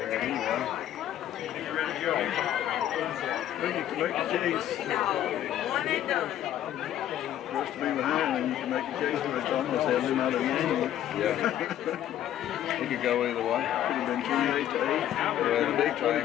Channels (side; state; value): right; quieter; 11.6 dB